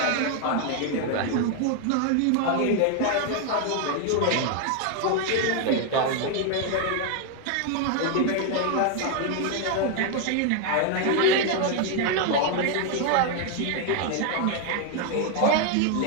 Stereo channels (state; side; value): different; both; correlation 0.01